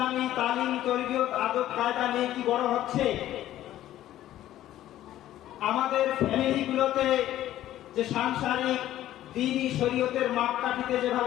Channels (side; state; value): right; quieter; 13.3 dB